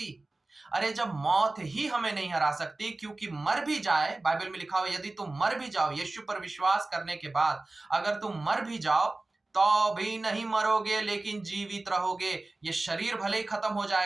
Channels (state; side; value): quieter; left; 3.0 dB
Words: अरे जब मौत ही हमें नहीं हरा सकती, क्योंकि मर भी जाए, बाइबल में लिखा हुआ यदि तुम मर भी जाओ यीशु पर विश्वास करने के बाद, अगर तुम मर भी जाओ तो भी नहीं मरोगे, लेकिन जीवित रहोगे। ये शरीर भले ही खत्म हो